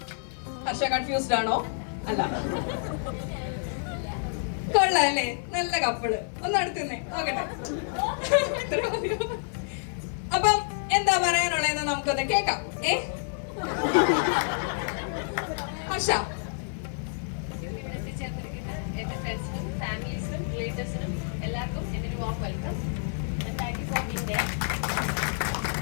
ഹർഷ കൺഫ്യൂസ്ഡ് ആണോ? അല്ല, കൊള്ളാല്ലേ, നല്ല കപ്പിള്. ഒന്ന് അടുത്തുന്നേ നോക്കട്ടെ. അപ്പം എന്താ പറയാനുള്ളതെന്ന് നമുക്കൊന്ന് കേക്കാം. ഹർഷ, എന്റെ ഫ്രണ്ട്സിനും ഫാമിലീസിനും റിലേറ്റീവ്സിനും എല്ലാവർക്കും എൻ്റെ ഒരു warm welcome. Thank you for being there.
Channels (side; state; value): right; silent; digital silence